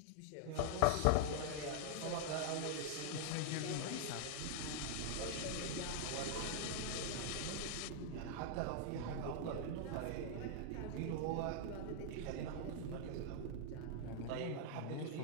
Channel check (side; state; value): both; different; correlation -0.01